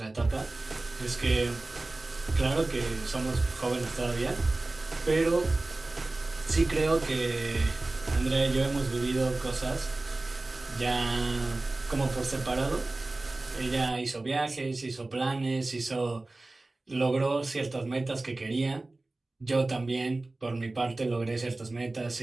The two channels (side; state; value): left; quieter; 3.0 dB